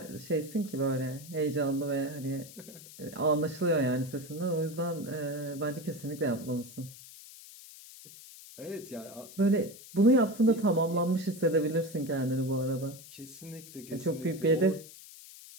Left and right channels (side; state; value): left; noise; hiss, 17 dB below the sound